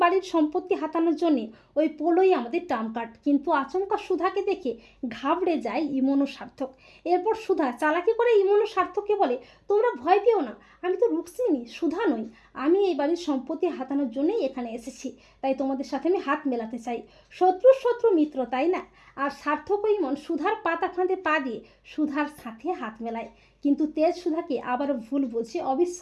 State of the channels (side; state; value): both; identical; correlation 1.00